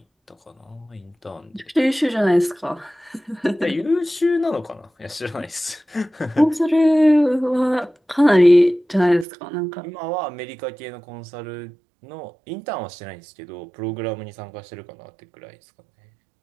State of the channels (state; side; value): drops out; left; at 9.2 s